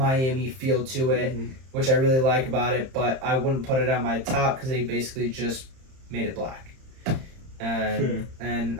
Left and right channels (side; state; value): left; late; 31 ms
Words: feel to it, which I really like about it. But I wouldn't put it on my top because they basically just made it black. And